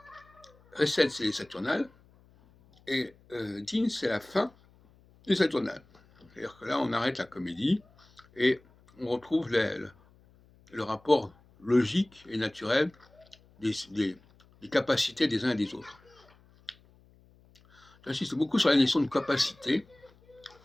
recette, c'est les saturnales, et Din, c'est la fin des saturnales. C'est-à-dire que là, on arrête la comédie, et on retrouve le rapport logique et naturel des capacités des uns et des autres. J'insiste beaucoup sur la notion de capacité,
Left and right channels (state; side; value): noise; left; hum, 29 dB below the sound